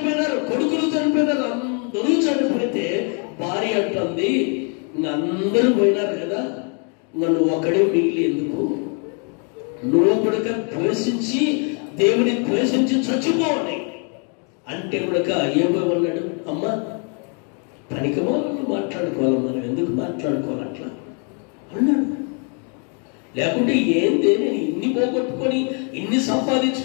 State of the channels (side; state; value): right; quieter; 39.1 dB